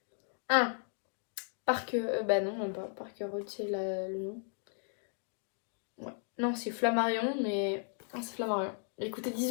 Ah, bah non, même pas. Parker Road, c'est le nom. Ouais. Non, c'est Flammarion, mais. Ah, c'est Flammarion. Il coûtait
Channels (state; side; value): silent; right; 54 dB below the other